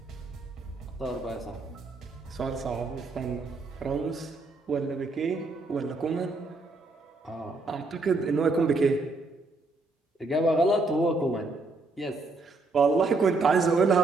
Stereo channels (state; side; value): quieter; left; 3.4 dB